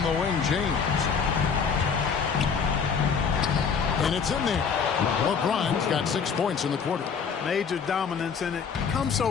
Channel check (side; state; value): right; quieter; 6.2 dB